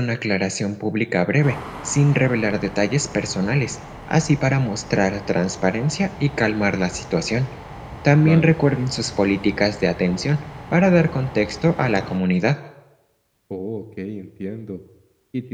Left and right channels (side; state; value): both; identical; correlation 1.00